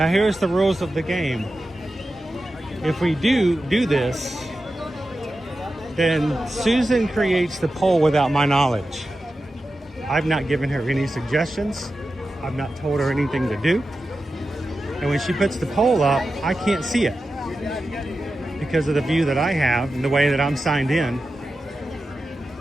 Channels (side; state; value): both; normal; correlation 0.92